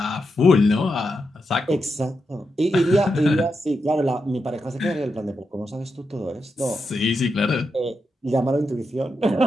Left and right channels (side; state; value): both; normal; correlation 0.86